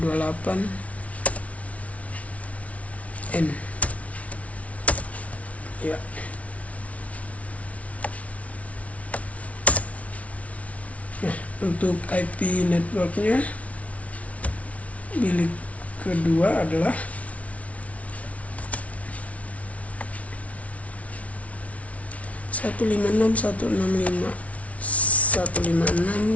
N ya. Nah, untuk IP networknya bilik kedua adalah 156.165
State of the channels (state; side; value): late; right; 0.066 ms